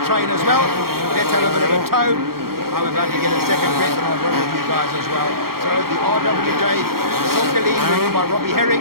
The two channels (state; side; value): late; left; 0.93 ms